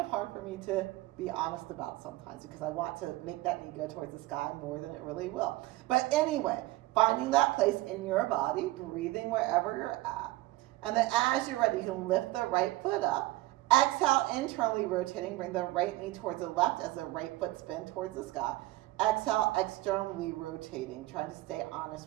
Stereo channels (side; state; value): left; quieter; 18.4 dB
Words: hard for me to be honest about sometimes, because I want to make that knee go towards the sky more than it really will. But anyway, finding that place in your body, breathing wherever you're at. And then as you're ready, you can lift the right foot up. Exhale, internally rotating, bring the right knee towards the left as the right foot spins towards the sky. Exhale, externally rotating, trying to stay